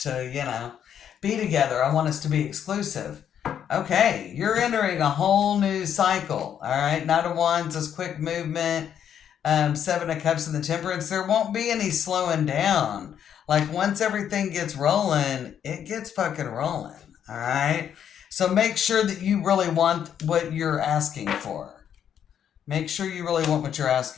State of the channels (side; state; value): right; quieter; 9.0 dB